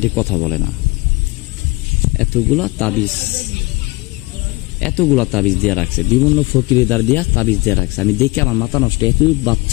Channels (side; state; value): right; quieter; 23.7 dB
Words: কথা বলে না। এতগুলা তাবিজ দিয়ে রাখছে, বিভিন্ন ফকিরেদার দিয়া তাবিজ দিয়ে রাখছে। আমি দেখে আমার মাথা নষ্ট। এত